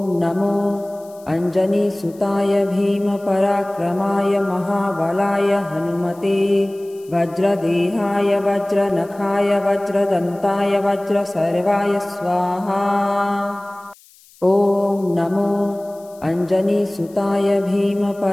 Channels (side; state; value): left; noise; hiss, 27 dB below the sound